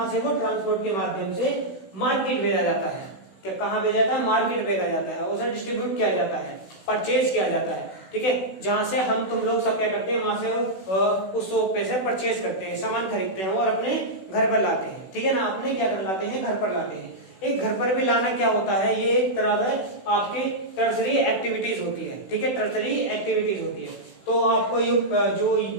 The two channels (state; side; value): late; right; 16 ms